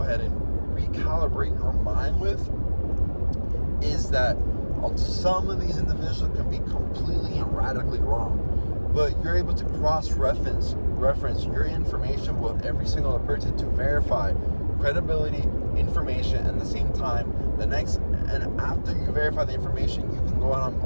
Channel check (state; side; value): inverted; both; correlation -1.00